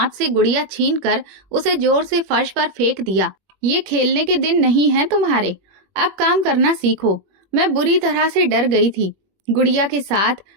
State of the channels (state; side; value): late; left; 21 ms